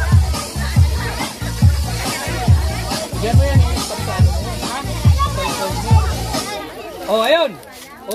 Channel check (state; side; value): identical; both; correlation 1.00